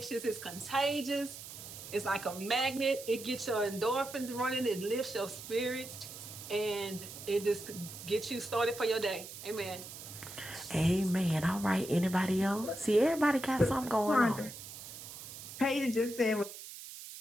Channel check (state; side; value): noise; right; hiss, 12 dB below the sound